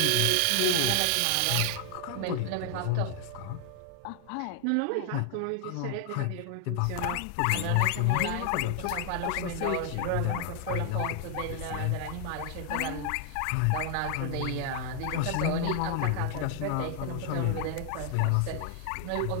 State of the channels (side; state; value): both; different; correlation 0.00